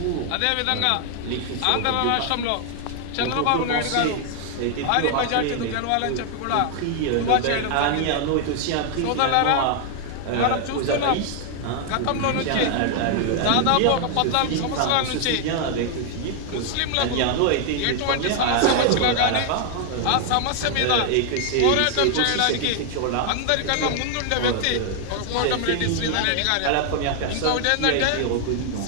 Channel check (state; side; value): different; both; correlation 0.00